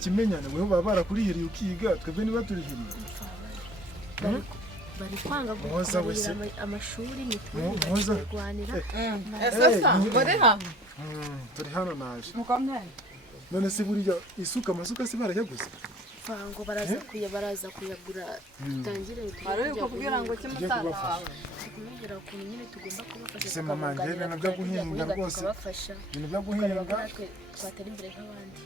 weho baba barakurihiriye ukiga twebwe niba turihiriye bari kwanga kukubarira amashuri mituweli kurwanira muri hamwe turi hano naje mukomeye none se buriya amasuka se barayaguze ngo baraza kuyagura dutangire kubwira ngo kimutaha kumubwira ukuntu nyine tugomba kubafasha se mama njye ibintu byo guhinga rwose ibintu byo guhinga twatera imbere nk'abandi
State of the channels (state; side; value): normal; both; correlation 0.51